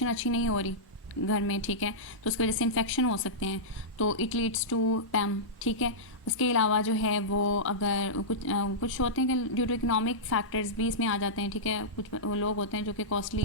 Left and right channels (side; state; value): both; normal; correlation -0.14